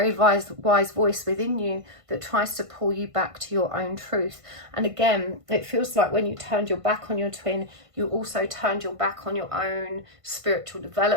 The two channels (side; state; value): left; late; 1.5 ms